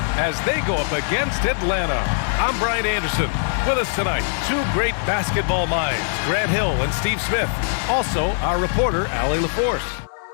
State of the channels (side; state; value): right; silent; digital silence